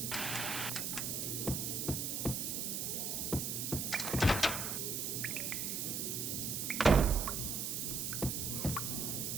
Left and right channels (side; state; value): right; noise; hiss, 1 dB below the sound